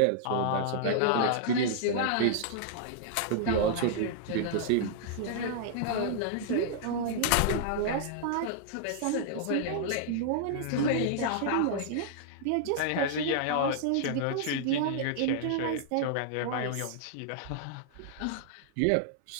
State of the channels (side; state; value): both; different; correlation -0.01